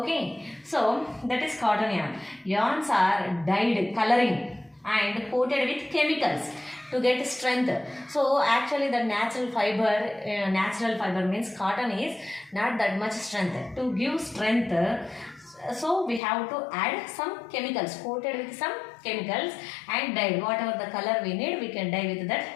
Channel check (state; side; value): drops out; right; at 16.2 s